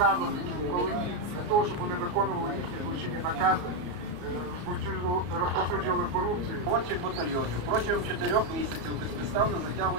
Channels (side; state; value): left; late; 33 ms